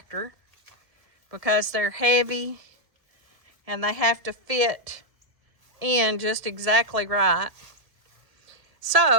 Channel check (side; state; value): left; late; 1.7 ms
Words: because they're heavy and they have to fit in just exactly right.